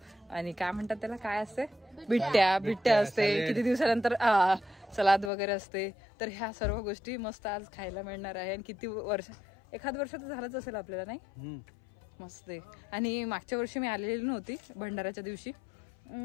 काय म्हणतात त्याला, काय असते, बिट्ट्या असते. किती दिवसानंतर सलाद वगैरे असते. तर ह्या सर्व गोष्टी मस्त आज खायला मिळणार आहे. आणि किती वर्ष, एखाद वर्ष तर झालंच असेल आपल्याला, नाही मस्त आहे. आणि मागच्या वर्षी मी आलेली नव्हती भंडाऱ्याच्या दिवशी.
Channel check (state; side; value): drops out; right; at 5.3 s